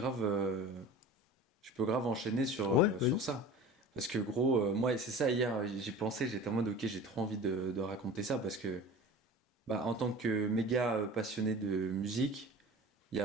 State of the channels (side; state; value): both; normal; correlation 0.38